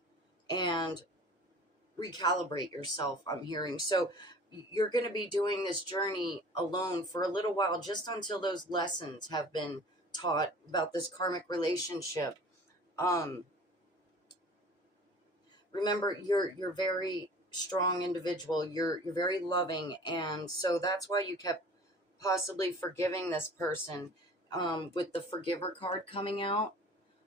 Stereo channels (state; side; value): normal; both; correlation 0.45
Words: and recalibrate yourself, I'm hearing. So you're going to be doing this journey alone for a little while, just until those lessons have been taught about this karmic relationship. Remember, you're very strong individual. You're very loving, and so that's why you kept possibly forgiving this person. With the forgiver card coming out,